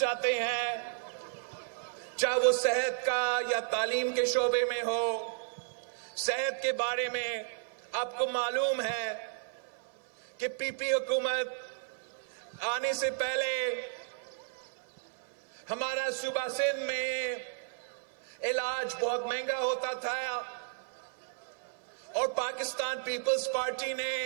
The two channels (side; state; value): left; silent; 56 dB below the other